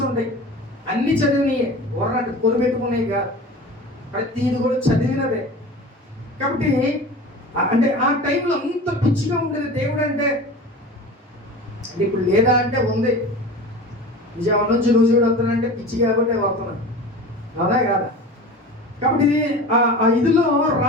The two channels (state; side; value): normal; both; correlation 0.35